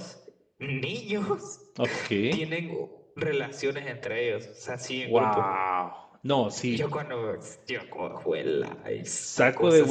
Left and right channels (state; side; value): identical; both; correlation 1.00